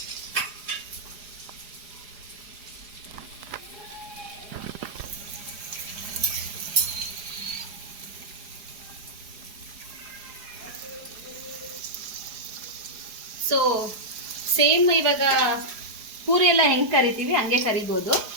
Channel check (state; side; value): late; left; 4.8 ms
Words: ಸೊ ಸೇಮ್ ಇವಾಗ ಪೂರಿ ಎಲ್ಲ ಹೆಂಗೆ ಕರಿತೀವಿ ಹಂಗೆ ಕರಿಬೋದು.